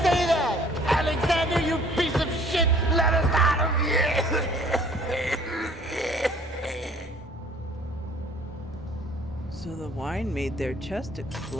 that? Alexander, you piece of shit! Let us out of here! So the wine made their chest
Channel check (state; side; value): normal; both; correlation 0.55